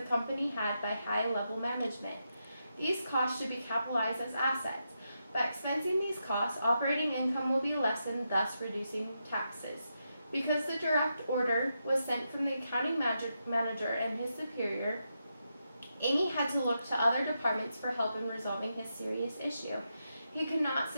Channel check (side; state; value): both; inverted; correlation -0.85